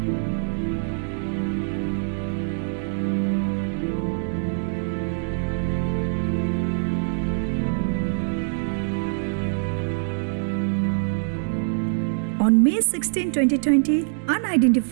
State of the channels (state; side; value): silent; left; digital silence